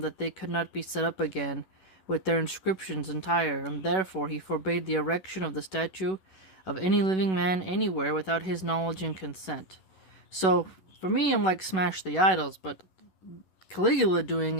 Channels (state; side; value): late; right; 11 ms